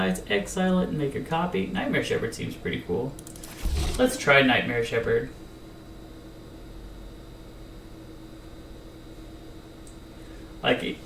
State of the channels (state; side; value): identical; both; correlation 1.00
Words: exile it and make a copy. Nightmare Shepherd seems pretty cool. Let's try Nightmare Shepherd. Like,